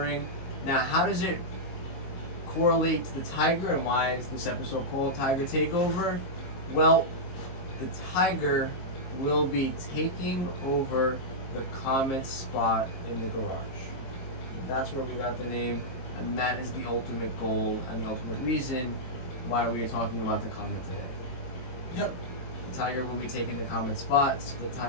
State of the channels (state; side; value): late; right; 22 ms